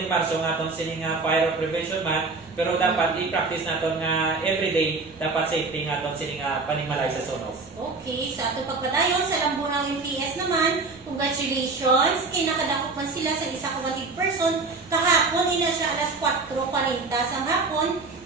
marso nga aton sini nga fire prevention month, pero dapat i-practice naton nga everyday dapat safety nga aton sini nga panimalay sa sunog. Okay, sa ato pagpadayon sa Lambunaw MPS naman, congratulations! Kinakadakop man sila sa isa ka 100 person. Kahapon, ina siya alas 4:40 sa hapon,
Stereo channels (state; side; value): quieter; left; 3.9 dB